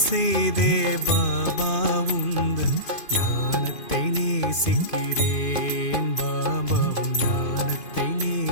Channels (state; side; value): late; right; 2.5 ms